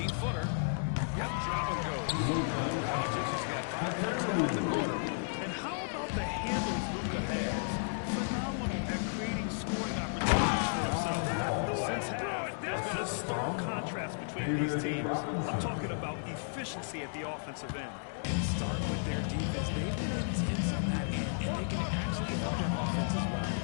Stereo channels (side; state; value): right; silent; digital silence